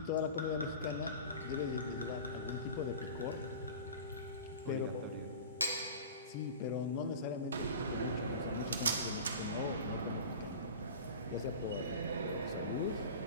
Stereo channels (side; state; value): both; inverted; correlation -0.35